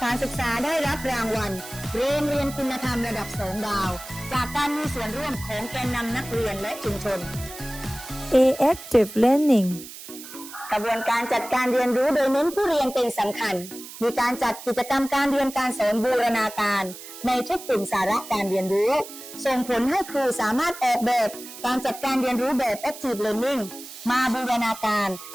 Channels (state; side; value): noise; right; hiss, 14 dB below the sound